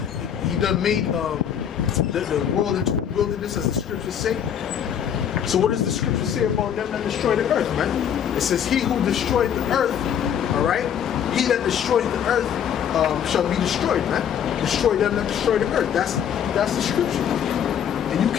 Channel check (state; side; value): quieter; right; 8.8 dB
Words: the world into a wilderness, as the scriptures say. So what does the scripture say about them that destroy the earth, man? It says, "He who destroyed the earth," all right, "he that destroyed the earth shall be destroyed," man. Destroy them that destroy the earth. That's the scripture. And you